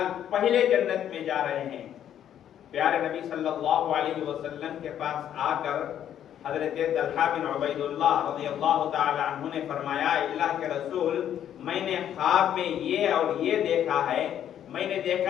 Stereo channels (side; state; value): right; quieter; 10.2 dB